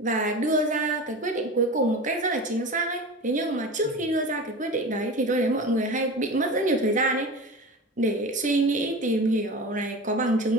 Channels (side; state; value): both; normal; correlation 0.31